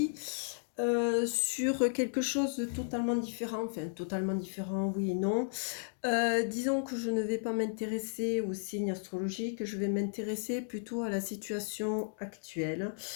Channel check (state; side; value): silent; right; digital silence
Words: sur quelque chose de totalement différent, enfin totalement différent, oui et non. Disons que je ne vais pas m'intéresser aux signes astrologiques, je vais m'intéresser plutôt à la situation actuelle,